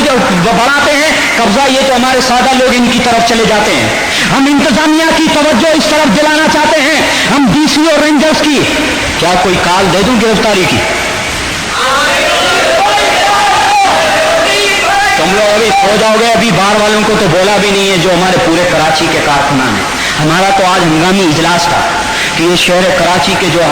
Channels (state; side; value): identical; both; correlation 1.00